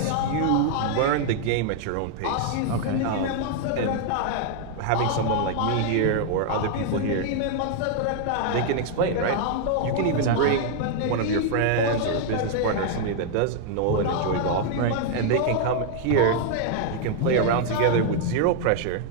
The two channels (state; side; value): different; both; correlation 0.00